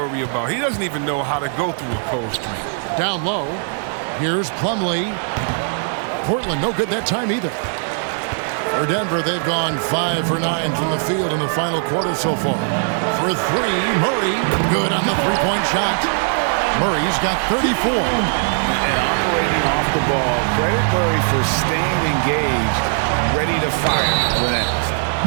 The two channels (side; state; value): left; silent; 66 dB below the other